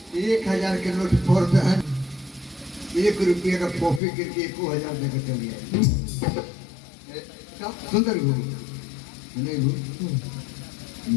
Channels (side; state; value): right; drops out; at 4.0 s